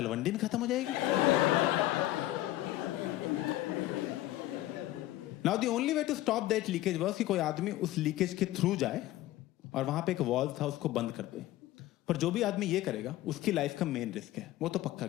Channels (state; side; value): quieter; right; 15.5 dB